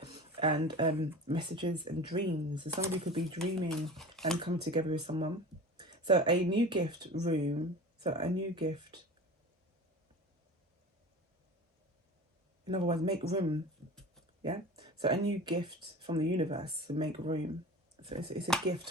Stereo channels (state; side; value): normal; both; correlation 0.35